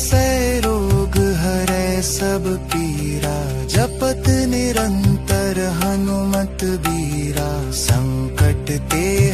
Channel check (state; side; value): identical; both; correlation 1.00